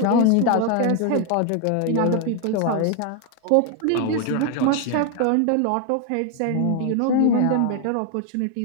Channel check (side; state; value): both; different; correlation 0.00